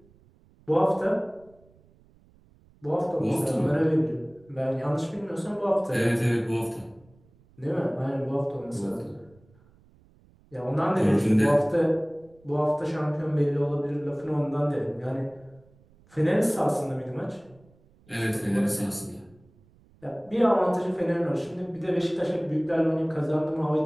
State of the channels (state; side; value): noise; right; rumble, 29 dB below the sound